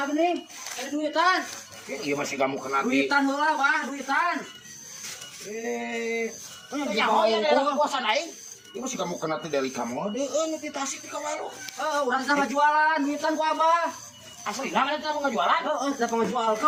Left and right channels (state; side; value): identical; both; correlation 1.00